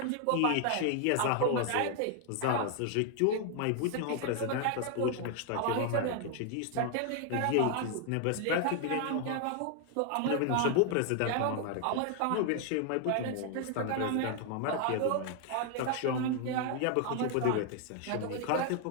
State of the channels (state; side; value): different; both; correlation 0.00